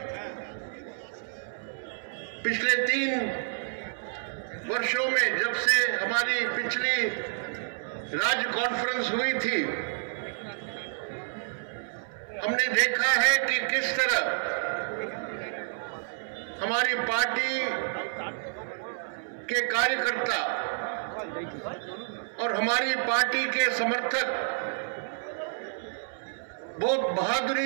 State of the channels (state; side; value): silent; left; 58 dB below the other